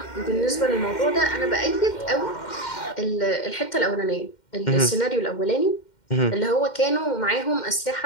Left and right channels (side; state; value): right; late; 2.1 ms